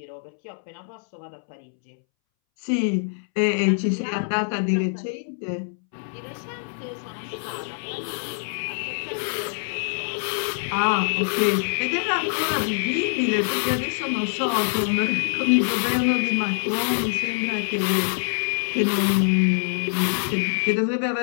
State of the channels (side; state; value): right; silent; 62 dB below the other